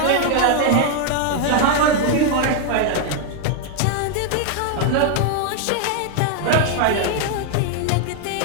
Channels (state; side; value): different; both; correlation 0.00